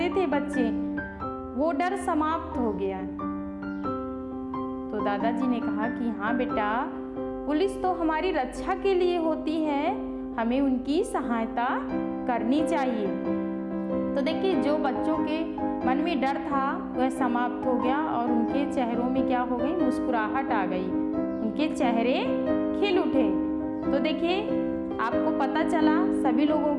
थे बच्चे, वो डर समाप्त हो गया। तो दादाजी ने कहा कि हाँ बेटा, पुलिस तो हमारी रक्षा के लिए होती है, हमें उनकी सहायता करनी चाहिए। तो देखिए, जो बच्चों के मन में डर था वह समाप्त हो गया और उनके चेहरों में क्या हो गई, मुस्कुराहट आ गई, उनके चेहरे खिल उठे। तो देखिए, आपको पता चला सभी लोगों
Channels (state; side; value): identical; both; correlation 1.00